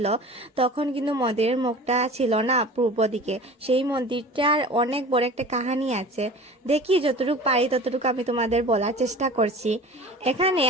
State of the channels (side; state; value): both; normal; correlation 0.39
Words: তখন কিন্তু মন্দিরের মুখটা ছিল না পূর্ব দিকে। সেই মন্দিরটার অনেক বড় একটা কাহিনী আছে, দেখি যতটুকু পারি ততটুকু আমি তোমাদের বলার চেষ্টা করছি। এখানে